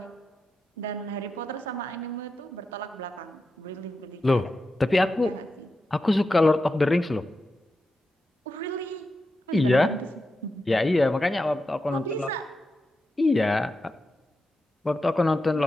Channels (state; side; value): normal; both; correlation 0.89